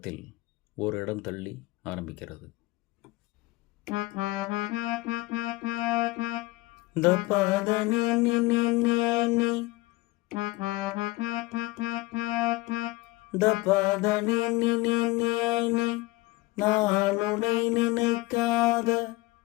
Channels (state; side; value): quieter; right; 20.8 dB